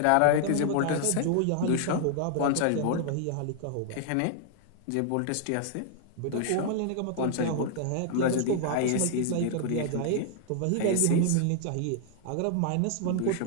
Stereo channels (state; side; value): different; both; correlation 0.00